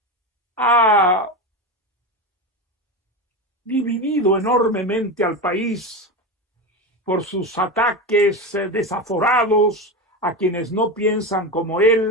ha dividido enormemente al país por sus ataques desaforados a quienes no piensan como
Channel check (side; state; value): both; normal; correlation 0.19